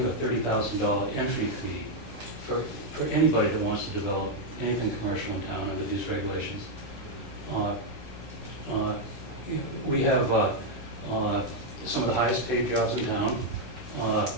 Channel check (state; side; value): normal; both; correlation 0.00